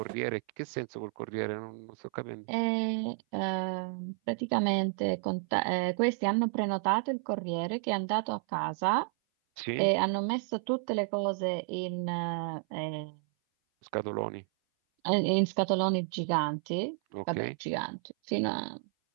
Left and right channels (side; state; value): left; silent; 56 dB below the other